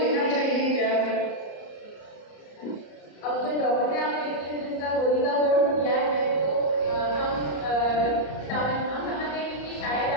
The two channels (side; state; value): right; late; 34 ms